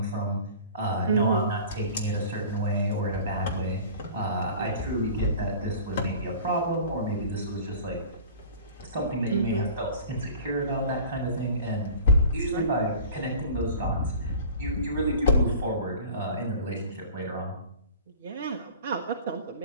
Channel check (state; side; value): inverted; both; correlation -0.42